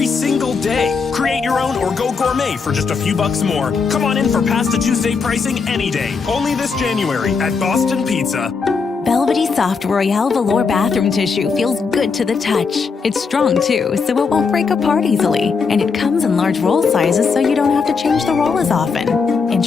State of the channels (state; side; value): quieter; right; 5.1 dB